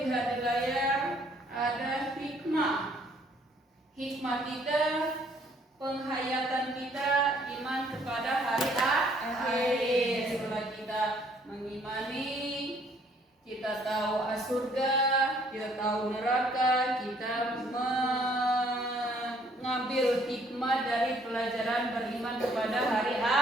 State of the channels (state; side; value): normal; both; correlation 0.63